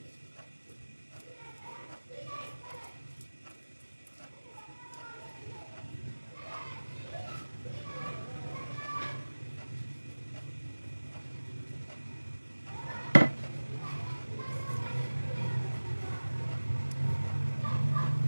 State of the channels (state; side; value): inverted; both; correlation -1.00